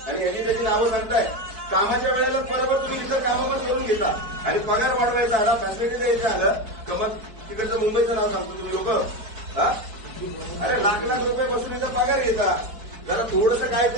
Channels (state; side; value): late; left; 4.6 ms